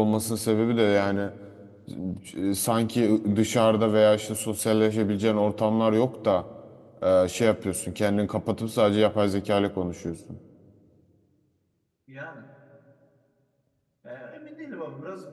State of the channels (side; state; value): both; identical; correlation 1.00